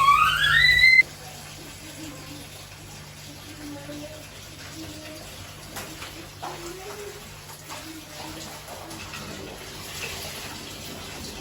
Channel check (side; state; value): both; identical; correlation 1.00